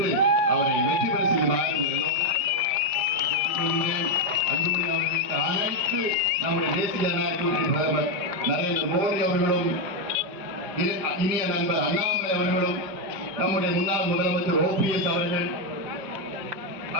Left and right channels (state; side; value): late; left; 5.0 ms